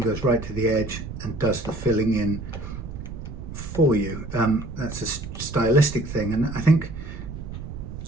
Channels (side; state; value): right; noise; rumble, 9 dB below the sound